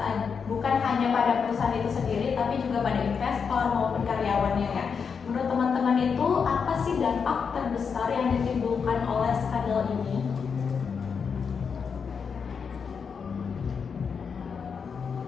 bukan hanya pada perusahaan itu sendiri, tapi juga pada investor maupun karyawannya ya. Menurut teman-teman itu apa sih dampak terbesar yang ditimbulkan oleh skandal ini?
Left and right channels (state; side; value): quieter; right; 6.1 dB